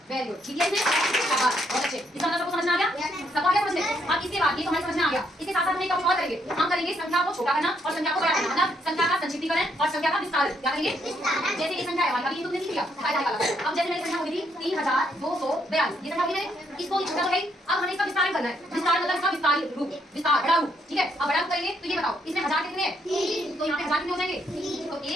Very good. ठीक है, इसमें शाबाश, बहुत अच्छे। इसका मतलब सबको समझ में आ गया? सबको आ गया समझ में? अब इसके बाद ये तो हमें समझ में आ गया। इसके साथ साथ हम एक और करेंगे। हम करेंगे संख्या को छोटा करना और संख्या को बड़ा करना, मतलब संख्या का संक्षिप्तीकरण और संख्या का विस्तार। क्या करेंगे? जैसे ये संख्या है हमारी, अभी तुमने लिख लिया अब जैसे मेरी संख्या होगी थी 3242, ये संख्या होगी मैंने, इसको छोटा हो गई। अब हमें इसका विस्तार करना है। विस्तार मतलब इसका विस्तारित रूप, विस्तार, बड़ा रूप। ठीक है, अब बड़ा रूप करेंगे तो ये बताओ इसमें 1000 कितने हैं? 3। तो यहाँ पे 1000 कितने हो जाएंगे? तो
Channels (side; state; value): both; normal; correlation 0.73